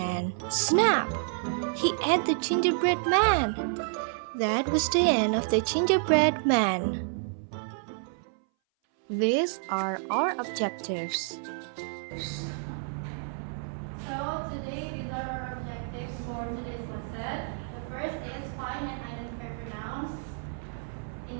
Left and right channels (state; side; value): silent; left; 58 dB below the other